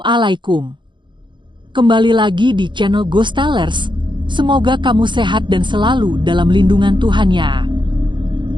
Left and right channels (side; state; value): left; late; 0.23 ms